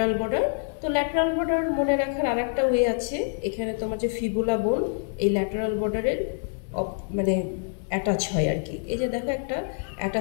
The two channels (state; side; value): silent; right; digital silence